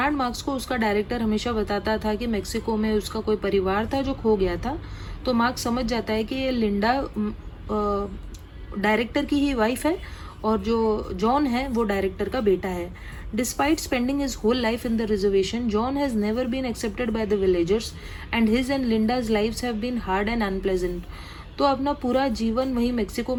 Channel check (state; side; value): identical; both; correlation 1.00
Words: मार्क्स को उसका डायरेक्टर हमेशा बताता था कि मेक्सिको में उसका कोई परिवार था जो खो गया था. तो मार्क्स समझ जाता है कि ये लिंडा डायरेक्टर की ही वाइफ है और जो जॉन है वो डायरेक्टर का बेटा है. Despite spending his whole life in the reservation, John has never been accepted by the villagers and his and Linda's lives have been hard and unpleasant. तो अपना पूरा जीवन वहीं मेक्सिको